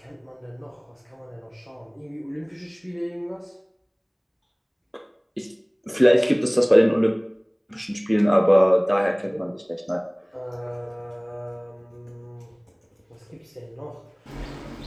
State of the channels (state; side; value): identical; both; correlation 1.00